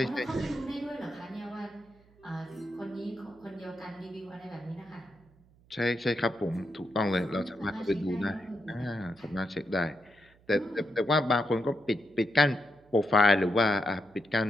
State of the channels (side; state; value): right; noise; hum, 29 dB below the sound